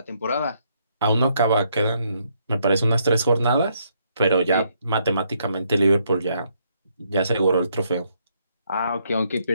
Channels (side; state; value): both; inverted; correlation -0.73